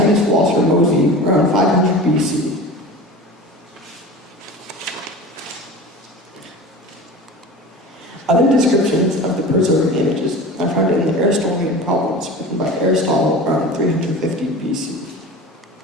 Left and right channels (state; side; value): normal; both; correlation 0.35